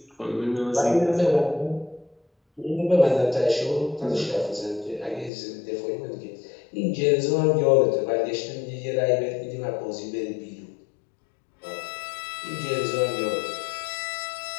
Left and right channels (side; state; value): right; drops out; at 5.3 s